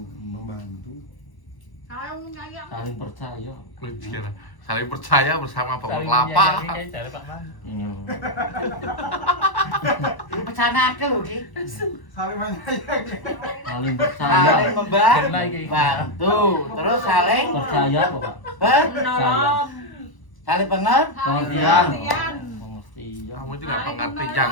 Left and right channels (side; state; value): right; late; 1.0 ms